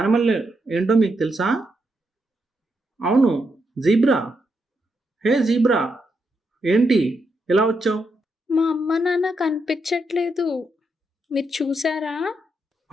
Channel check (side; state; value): both; normal; correlation 0.81